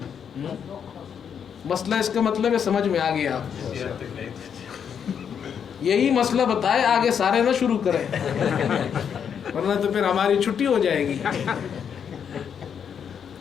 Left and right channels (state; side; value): quieter; right; 7.7 dB